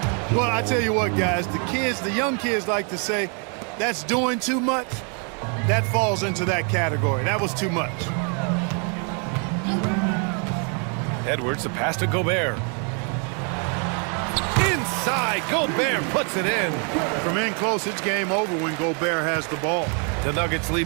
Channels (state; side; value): quieter; left; 38.6 dB